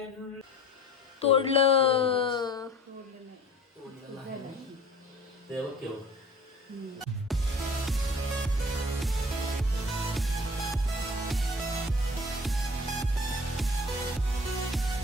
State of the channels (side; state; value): both; normal; correlation 0.45